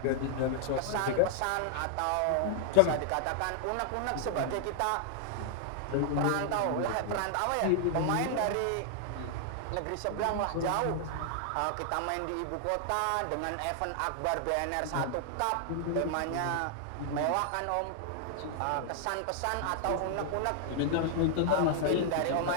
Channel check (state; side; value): different; both; correlation 0.00